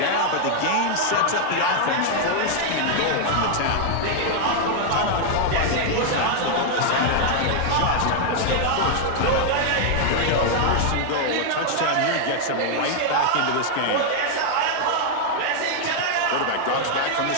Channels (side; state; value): both; different; correlation 0.00